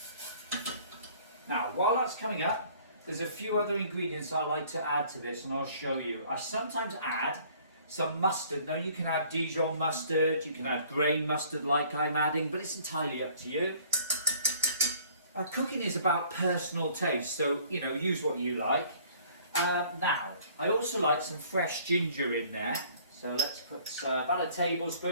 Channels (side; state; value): both; inverted; correlation -0.56